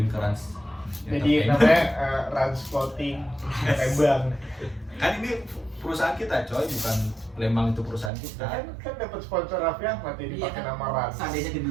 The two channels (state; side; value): drops out; left; at 8.1 s